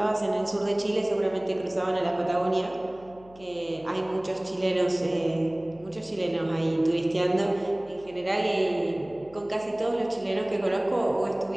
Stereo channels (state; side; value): noise; left; hum, 25 dB below the sound